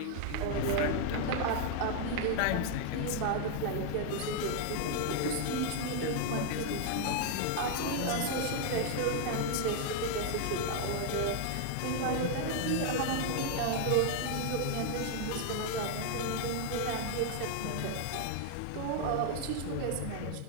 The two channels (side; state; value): both; different; correlation 0.00